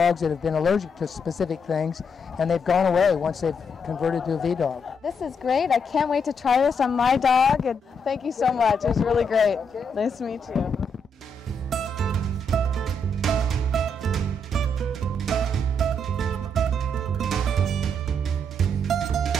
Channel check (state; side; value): normal; both; correlation 0.77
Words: that have been allergic to specific things, and they've gone away once they've converted to a V-Dog. This is great. I can't wait to try this on my dog, and thank you so much. It was really great. Nice to meet you.